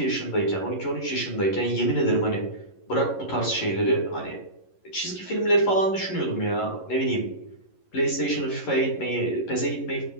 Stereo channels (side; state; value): right; late; 11 ms